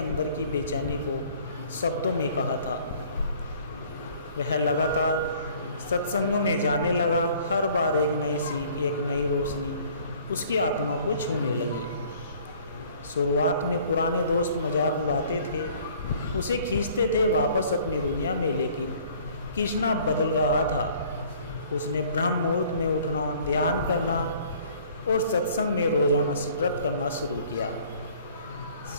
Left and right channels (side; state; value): both; inverted; correlation -0.55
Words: की बेचैनी को शब्दों में कहा था। वह लगातार सत्संगों में जाने लगा। हर बार एक नई सीख, एक नई रोशनी उसकी आत्मा को छूने लगी। शुरुआत में पुराने दोस्त मजाक उड़ाते थे, उसे खींचते थे वापस अपनी दुनिया में, लेकिन कृष्णा बदल रहा था। उसने ब्रह्म मुहूर्त में उठना, ध्यान करना और सत्संग में रोजाना व्रत करना शुरू किया।